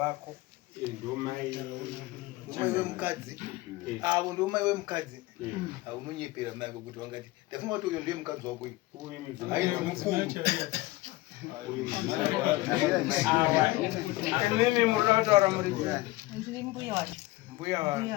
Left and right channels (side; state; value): right; quieter; 19.6 dB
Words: ndomai umai wemukadzi avo ndomai wemukadzi unonyepera mai ako kuti wangati ndafunga kuti uyo ndiye mukadzi wako uyu ainzi mukuru imimi murina kutaura muri ndiri mbuya wacho mbuya wa